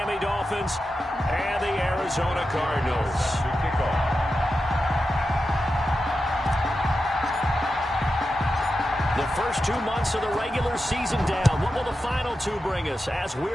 Dolphins and the Arizona Cardinals. The first 2 months of the regular season down. What will the final two bring us as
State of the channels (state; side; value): normal; both; correlation 0.90